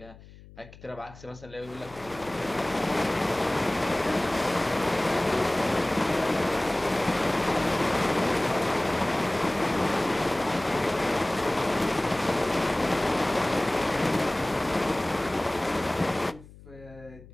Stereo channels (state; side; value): noise; left; hum, 21 dB below the sound